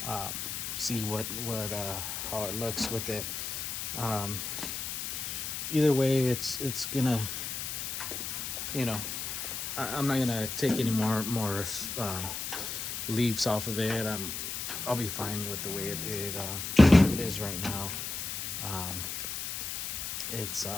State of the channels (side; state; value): left; noise; hiss, 4 dB below the sound